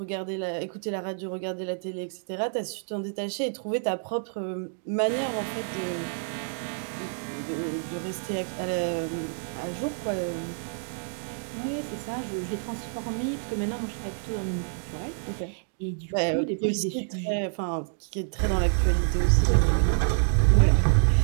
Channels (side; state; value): left; silent; digital silence